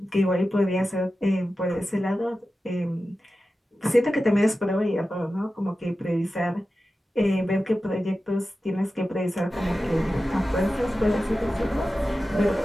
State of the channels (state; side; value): normal; both; correlation 0.93